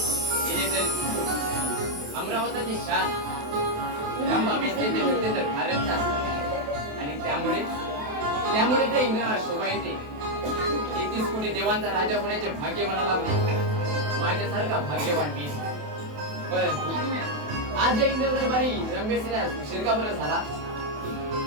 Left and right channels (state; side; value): late; left; 28 ms